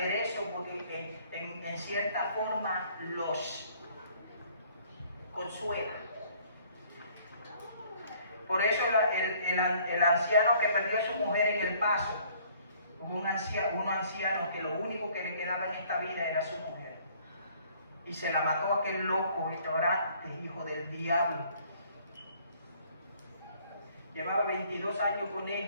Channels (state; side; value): inverted; both; correlation -0.58